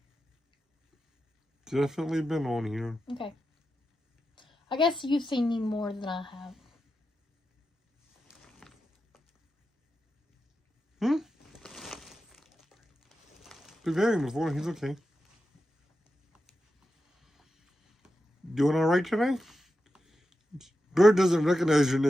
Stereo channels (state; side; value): normal; both; correlation 0.90